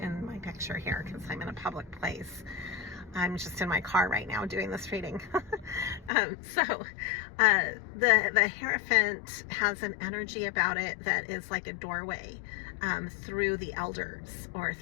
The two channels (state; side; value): drops out; right; at 6.1 s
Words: my picture here because I'm in a public place. I'm just in my car right now doing this reading. The Hierophant has an energy about it that is like a doorway through the elders or